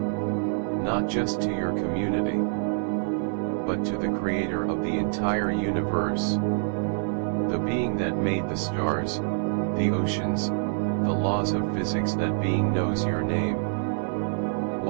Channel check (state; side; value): silent; left; digital silence